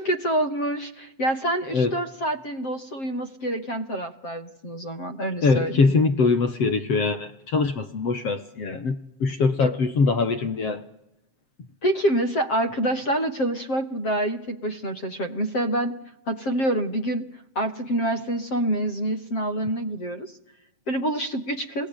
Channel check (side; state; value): right; late; 7.5 ms